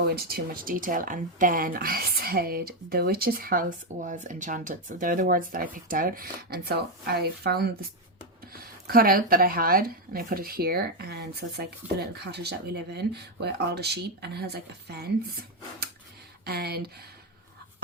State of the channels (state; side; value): normal; both; correlation 0.06